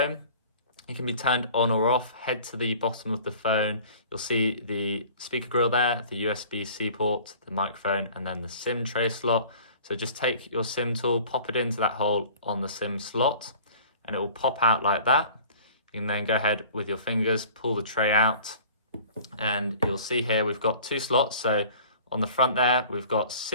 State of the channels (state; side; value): inverted; both; correlation -0.47